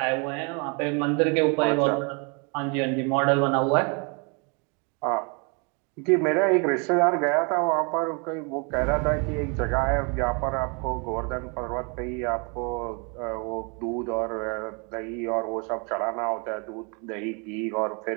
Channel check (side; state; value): left; quieter; 34.2 dB